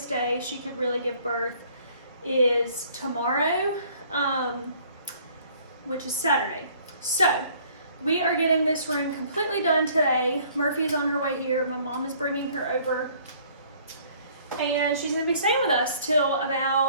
day she could really give birth is tomorrow, which is Saturday. So we are getting this room completely done today. Murphy's on her way here. My mom is bringing her over, and she's gonna be staying with us till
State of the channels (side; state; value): both; inverted; correlation -0.58